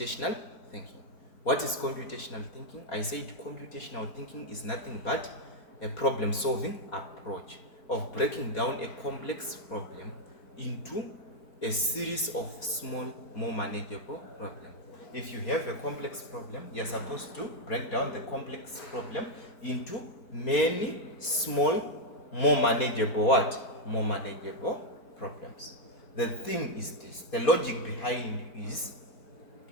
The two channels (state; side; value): late; right; 4.5 ms